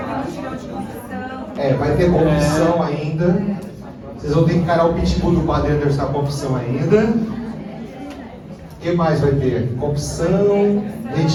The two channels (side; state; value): both; identical; correlation 1.00